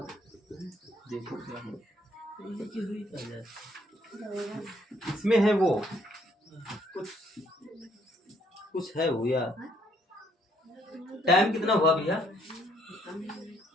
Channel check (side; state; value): both; normal; correlation 0.67